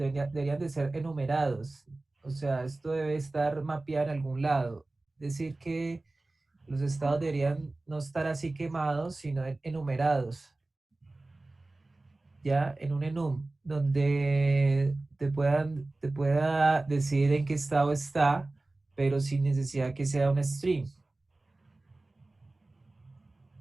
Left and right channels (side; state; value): left; quieter; 3.0 dB